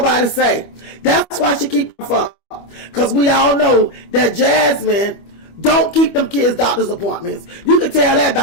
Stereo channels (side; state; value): right; late; 25 ms